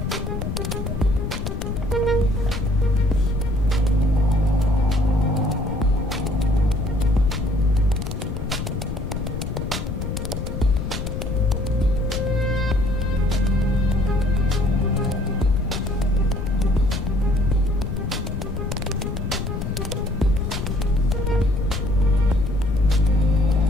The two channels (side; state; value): left; noise; rumble, 4 dB below the sound